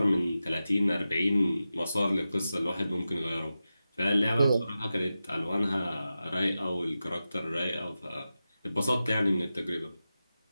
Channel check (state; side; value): inverted; both; correlation -0.92